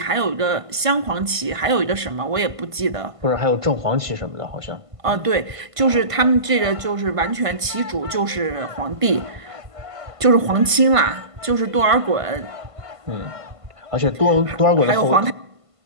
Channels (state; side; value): late; left; 1.5 ms